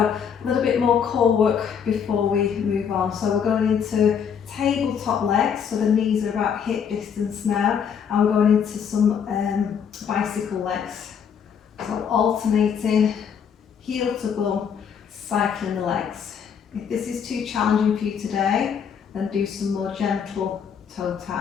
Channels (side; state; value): right; quieter; 7.4 dB